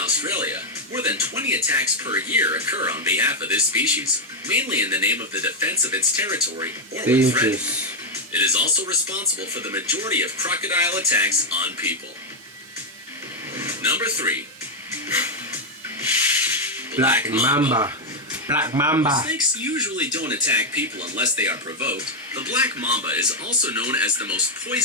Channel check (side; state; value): both; normal; correlation 0.02